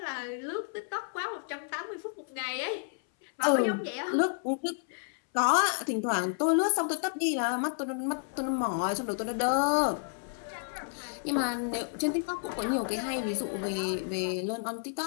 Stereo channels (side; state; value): right; silent; 57 dB below the other